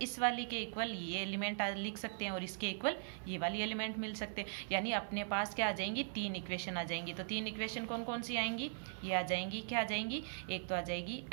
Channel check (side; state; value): left; silent; 51 dB below the other